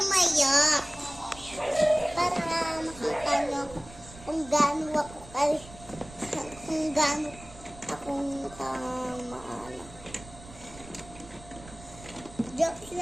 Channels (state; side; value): noise; right; rumble, 18 dB below the sound